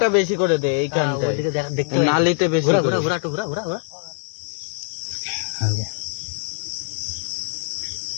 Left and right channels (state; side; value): silent; right; digital silence